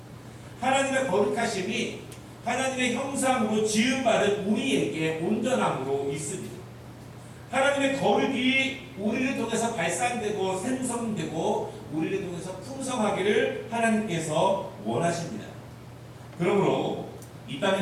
하나님의 거룩하심이 하나님의 형상으로 지음받은 우리에게 온전함으로 있습니다. 하나님의 거룩이 우리를 통해서 발산되고 생성되고 우리를 통해서 풍성하기를 하나님께서 원하십니다. 그러므로 이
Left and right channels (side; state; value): both; identical; correlation 1.00